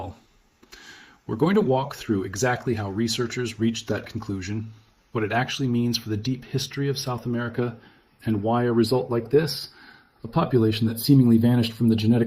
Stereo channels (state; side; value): identical; both; correlation 1.00